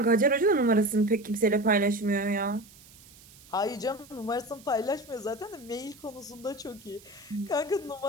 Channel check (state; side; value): noise; right; hiss, 23 dB below the sound